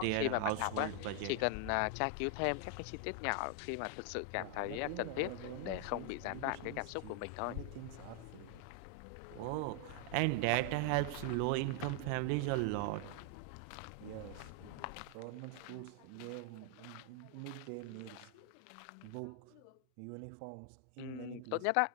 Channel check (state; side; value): different; both; correlation 0.00